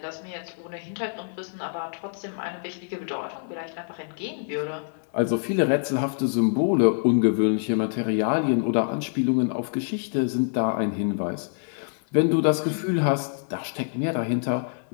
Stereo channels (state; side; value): silent; right; digital silence